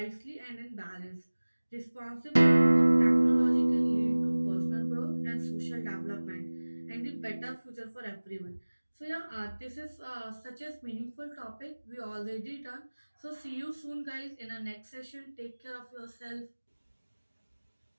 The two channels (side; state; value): both; inverted; correlation -1.00